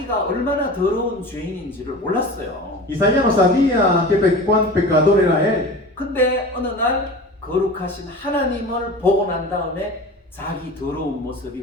얼마나 더러운 죄인인지를 몰랐어요. Isaías no sabía cuán pecador era él. 근데 어느 날 거룩하신 하나님을 보고 난 다음에 자기 더러운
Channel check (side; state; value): both; normal; correlation 0.35